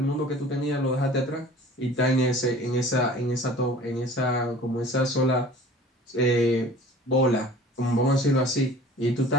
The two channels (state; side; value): normal; both; correlation 0.45